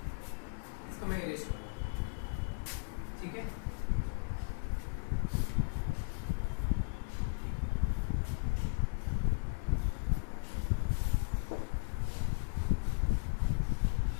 इसको मैं इरेज करूँगा, ठीक है।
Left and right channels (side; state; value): right; silent; 54 dB below the other